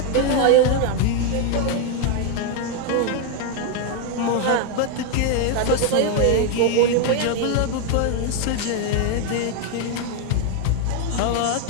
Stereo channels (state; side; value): different; both; correlation 0.01